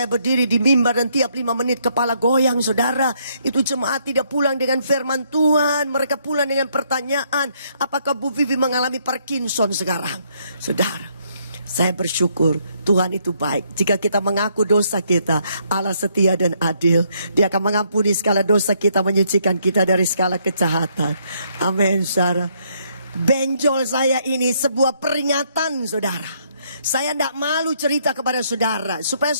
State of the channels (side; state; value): both; inverted; correlation -0.71